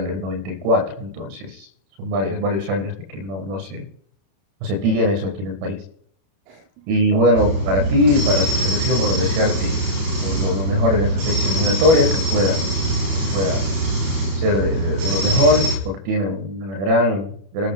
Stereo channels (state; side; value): late; left; 32 ms